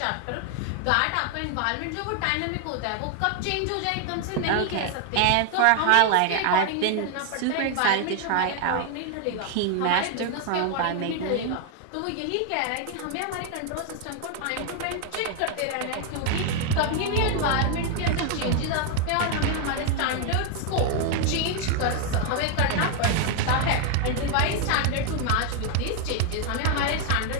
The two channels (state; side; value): different; both; correlation 0.00